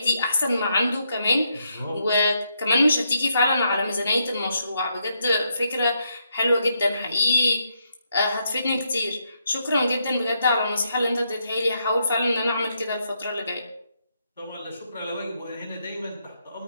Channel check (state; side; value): inverted; both; correlation -0.79